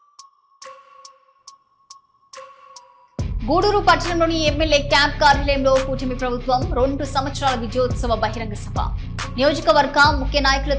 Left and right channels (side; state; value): both; identical; correlation 1.00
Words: గూడూరు పట్టణంలోని ఎమ్మెల్యే క్యాంప్ కార్యాలయంలో కూటమి ప్రభుత్వం 2 సంవత్సరాల విజయోత్సవ బహిరంగ సభ. నియోజకవర్గ ముఖ్య